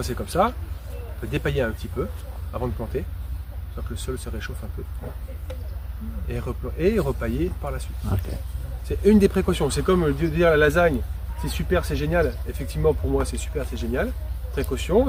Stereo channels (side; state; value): both; identical; correlation 1.00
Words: c'est comme ça, on peut dépailler un petit peu avant de planter, soit que le sol se réchauffe un peu. Et repailler par la suite. Ok. C'est une des précautions. C'est comme dire la lasagne, c'est super, c'est génial. Effectivement, pour moi, c'est super, c'est génial.